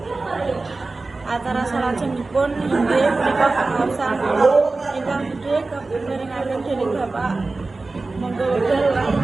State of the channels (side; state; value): left; quieter; 3.5 dB